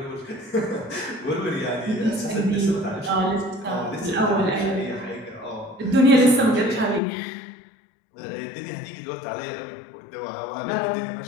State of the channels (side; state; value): right; drops out; at 7.0 s